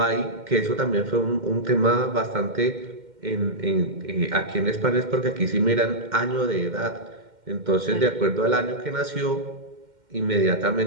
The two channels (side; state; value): left; late; 2.1 ms